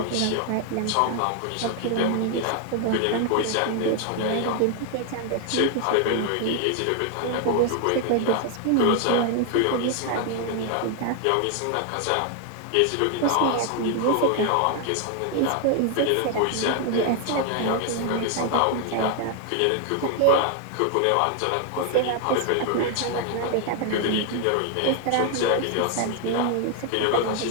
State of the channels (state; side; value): different; both; correlation 0.00